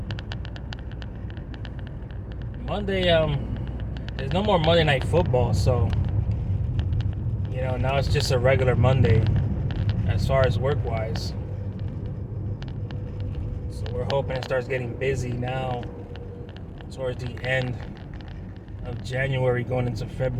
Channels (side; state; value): both; identical; correlation 1.00